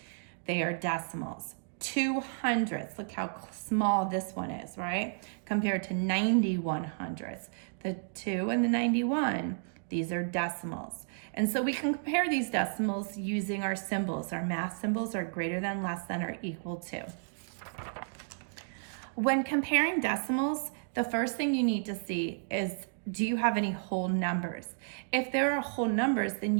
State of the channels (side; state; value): left; silent; digital silence